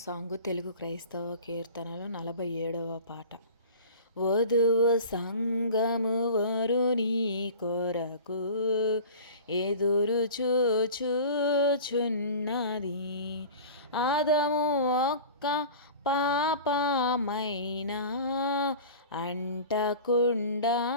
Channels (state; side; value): inverted; both; correlation -0.38